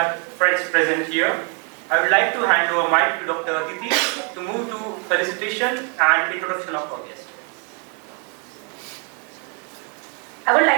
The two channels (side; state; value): left; quieter; 36.2 dB